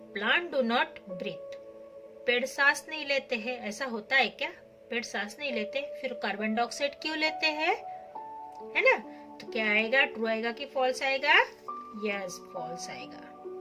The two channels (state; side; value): identical; both; correlation 1.00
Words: plant do not breathe. पेड़ सांस नहीं लेते हैं, ऐसा होता है क्या? पेड़ सांस नहीं लेते, फिर कार्बन डाइऑक्साइड क्यों लेते हैं, है ना? तो क्या आएगा, ट्रू आएगा कि फॉल्स आएगा? यस, फॉल्स आएगा,